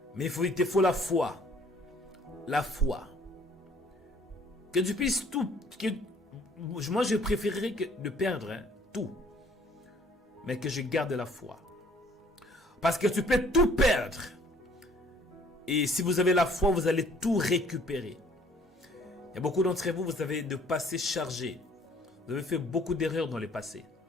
Mais il te faut la foi. La foi. Que tu puisses tout. Moi, je préférerais de perdre tout. Mais que je garde la foi. Parce que tu peux tout perdre. Et si vous avez la foi, vous allez tout récupérer. Il y a beaucoup d'entre vous, vous avez de passé chargé. Vous avez fait beaucoup d'erreurs dans le passé.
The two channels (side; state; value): both; normal; correlation 0.58